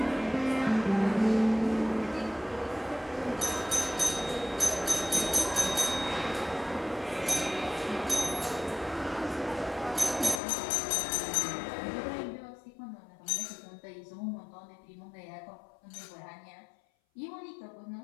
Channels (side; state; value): right; drops out; at 10.4 s